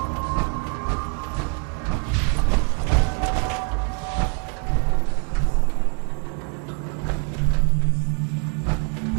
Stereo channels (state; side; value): quieter; left; 37.4 dB